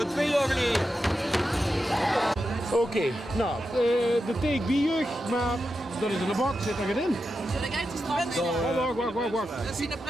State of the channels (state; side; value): normal; both; correlation 0.89